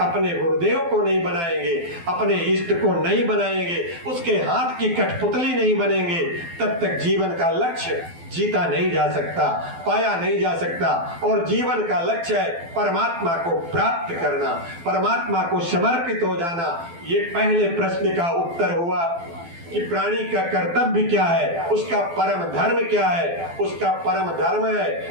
अपने गुरुदेव को नहीं बनाएंगे, अपने इष्ट को नहीं बनाएंगे, उसके हाथ की कठपुतली नहीं बनेंगे, तब तक जीवन का लक्ष्य जीता नहीं जा सकता, पाया नहीं जा सकता। और जीवन का लक्ष्य है परमात्मा को प्राप्त करना, परमात्मा को समर्पित हो जाना। ये पहले प्रश्न का उत्तर हुआ कि प्राणी का कर्तव्य क्या है, उसका परम धर्म क्या है। उसका परम धर्म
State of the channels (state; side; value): late; left; 12 ms